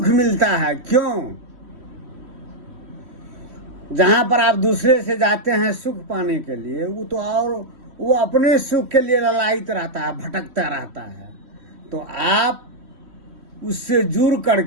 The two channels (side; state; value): left; late; 3.1 ms